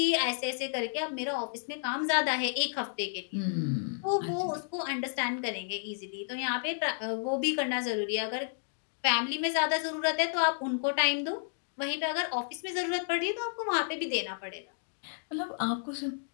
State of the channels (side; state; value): right; silent; digital silence